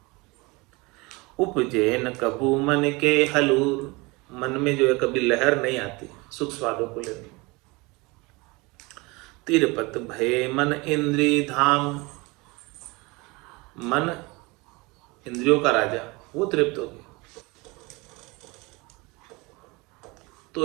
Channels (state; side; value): quieter; left; 25.1 dB